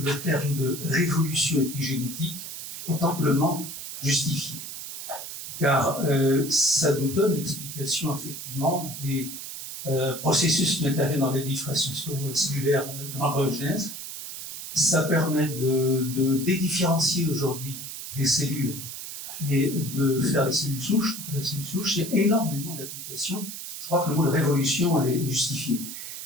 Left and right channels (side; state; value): right; noise; hiss, 9 dB below the sound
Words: terme de révolution épigénétique est amplement justifié, car ça nous donne l'explication effectivement des processus qui interviennent dans les diffraction cellulaire de l'embryogenèse. Ça permet de dédifférencier aujourd'hui les cellules et de faire des cellules souches. Il y a énormément d'applications. Je crois que le mot de révolution est justifié.